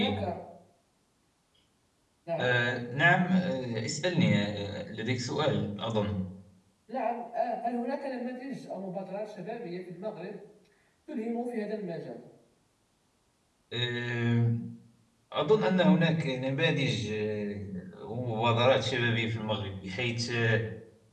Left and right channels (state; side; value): identical; both; correlation 1.00